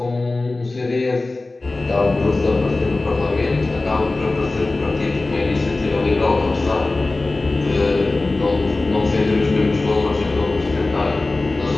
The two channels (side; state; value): right; quieter; 3.2 dB